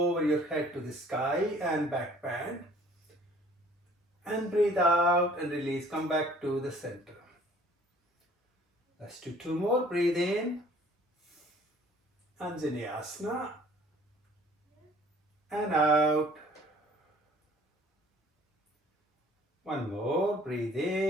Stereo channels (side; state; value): both; normal; correlation 0.55